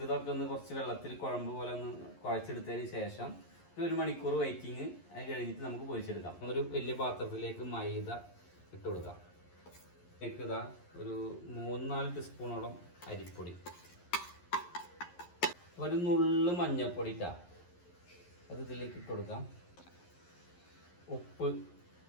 ഒന്ന് കുറച്ച് വെള്ളത്തിൽ കുഴമ്പ് പോലെ ഒന്ന് കുഴച്ചെടുത്തതിന് ശേഷം ഒരു മണിക്കൂർ വെയിറ്റിങ്. അത് കഴിഞ്ഞിട്ട് നമുക്ക് പൊരിച്ചെടുക്കാം. ഒരു വലിയ പാത്രത്തിലേക്ക് മൈദ ഇട്ട് കൊടുക്കാം. ഇതാ ഒരു 3-4 ടീസ്പൂണോളം അരിപ്പൊടി, ഒരു നുള്ളു മഞ്ഞൾപ്പൊടി ഇട്ടാ അത് ഇതിലേക്ക് ഇട്ട് കൊടുക്കാം. ഉപ്പ്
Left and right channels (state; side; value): late; right; 11 ms